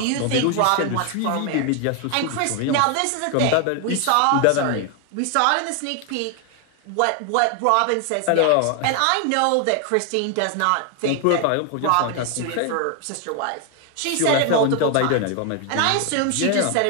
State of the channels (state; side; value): different; both; correlation 0.01